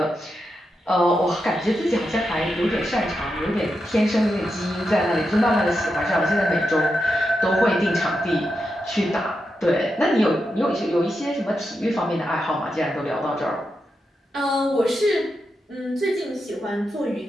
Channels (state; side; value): normal; both; correlation 0.86